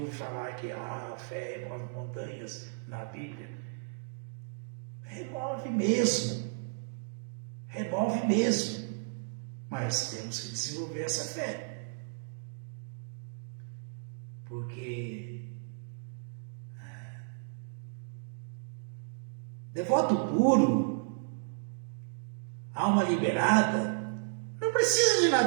falar que a fé remove montanhas na Bíblia. Remove mesmo, mas temos que desenvolver essa fé, porque devoto puro, alma liberada, não precisa de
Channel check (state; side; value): silent; left; digital silence